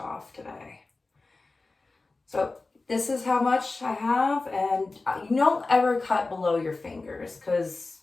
today. So this is how much I have, and you don't ever cut below your fingers, because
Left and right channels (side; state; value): right; quieter; 3.5 dB